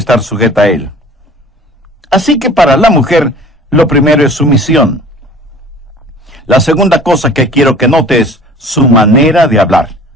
sujeta a él. Así que para la mujer, lo primero es sumisión. La segunda cosa que quiero que note es su manera de hablar.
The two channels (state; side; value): normal; both; correlation 0.47